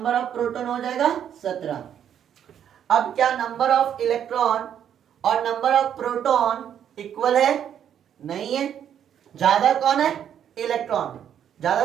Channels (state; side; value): quieter; left; 9.3 dB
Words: ऑफ प्रोटॉन हो जाएगा 17। अब क्या नंबर ऑफ इलेक्ट्रॉन और नंबर ऑफ प्रोटॉन इक्वल है, नहीं है। ज्यादा कौन है इलेक्ट्रॉन,